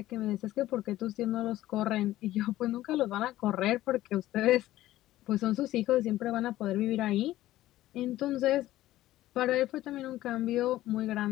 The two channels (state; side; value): quieter; right; 15.1 dB